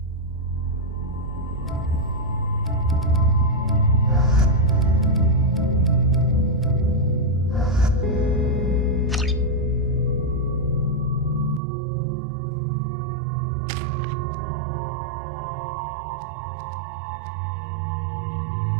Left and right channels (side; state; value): left; drops out; at 11.6 s